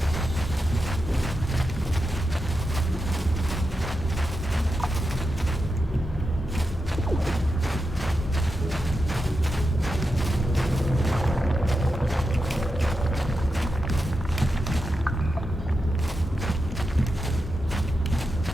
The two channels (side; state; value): both; normal; correlation 0.88